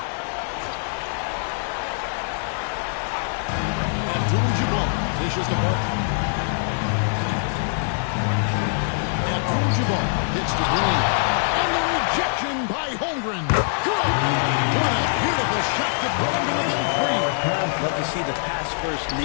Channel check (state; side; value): silent; right; digital silence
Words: Dishes the ball. Abdul-Jabbar hits the green. And the rejection by Holmgren. Good. What a beautiful shot to put him to within 3. Love to see the pass-first